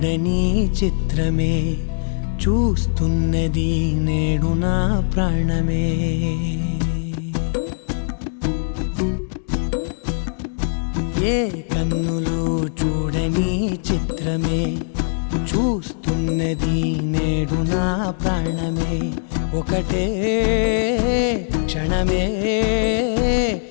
చిత్రమే చూస్తున్నది నేడు నా ప్రాణమే. ఏ కన్నులు చూడని చిత్రమే చూస్తున్నది నేడు నా ప్రాణమే. ఒకటే క్షణమే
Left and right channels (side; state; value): right; silent; digital silence